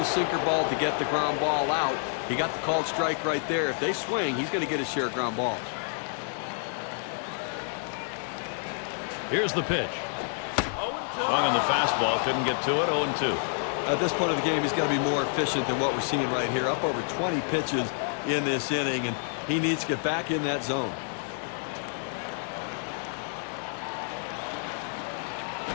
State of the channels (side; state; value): right; silent; 59 dB below the other